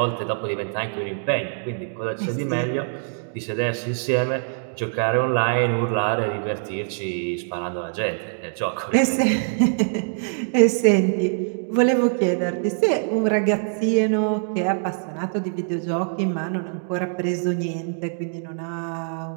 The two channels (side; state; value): left; silent; digital silence